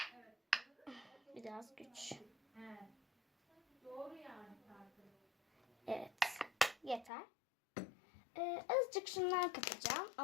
Biraz güç. Evet. Yeter. Azıcık şundan katacağım.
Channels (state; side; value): drops out; right; at 7.1 s